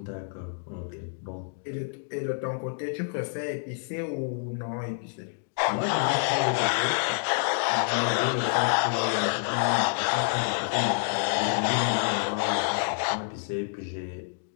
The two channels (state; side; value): silent; right; digital silence